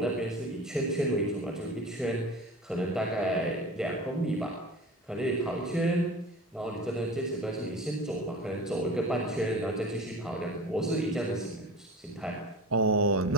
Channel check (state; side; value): normal; both; correlation 0.35